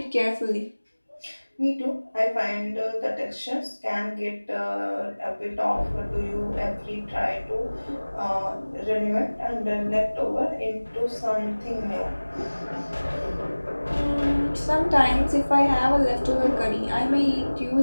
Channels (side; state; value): both; inverted; correlation -1.00